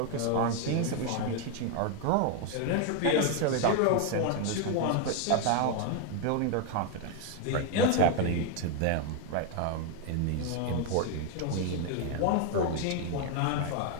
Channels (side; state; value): both; different; correlation 0.01